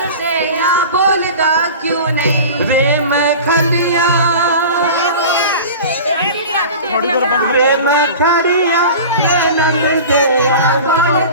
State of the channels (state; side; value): inverted; both; correlation -0.36